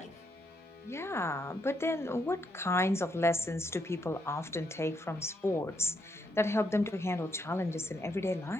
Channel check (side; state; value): both; normal; correlation 0.77